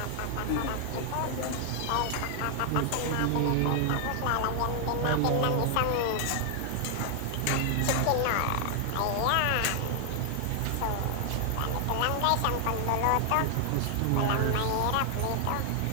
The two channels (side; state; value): both; different; correlation 0.00